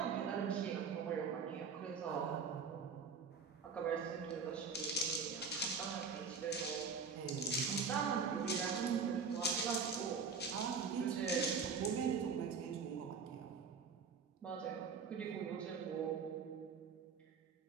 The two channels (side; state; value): left; quieter; 5.5 dB